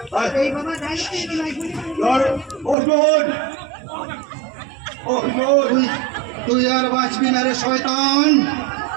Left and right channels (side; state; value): left; drops out; at 2.8 s